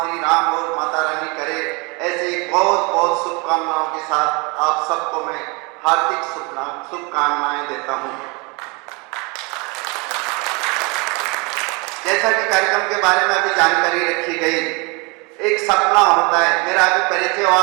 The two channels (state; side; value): quieter; left; 29.0 dB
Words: श्री राम और माता रानी करे। ऐसे बहुत बहुत शुभकामनाओं के साथ आप सबको मैं हार्दिक शुभकामनाएं देता हूँ। जैसा कि कार्यक्रम के बारे में अभी जानकारी रखी गई, एक सपना होता है, मेरा अभी परिचय हुआ